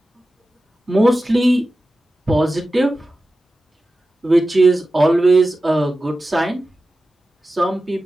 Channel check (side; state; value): both; normal; correlation 0.94